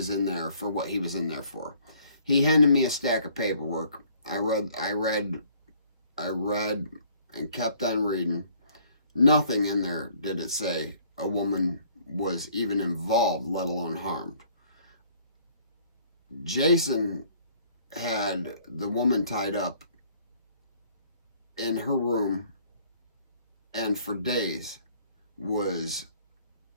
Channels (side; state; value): both; inverted; correlation -0.59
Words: in there for what he was in there for. He handed me a stack of paperwork. I read, and kept on reading. Nothing in there did it say a woman was even involved, let alone harmed. Jason had the woman tied up in her room, and for days was